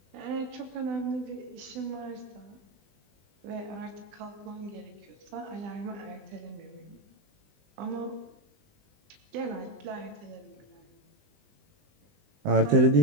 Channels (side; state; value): left; late; 20 ms